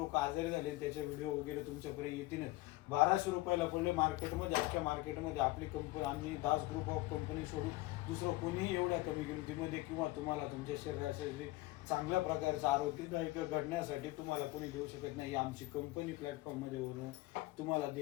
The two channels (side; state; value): right; quieter; 19.7 dB